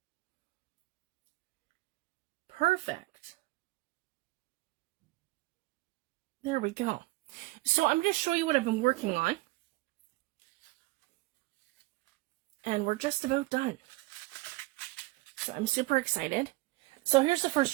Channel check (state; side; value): quieter; left; 21.4 dB